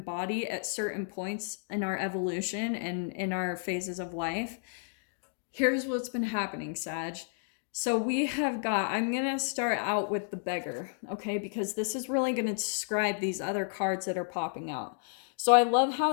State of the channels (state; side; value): silent; right; digital silence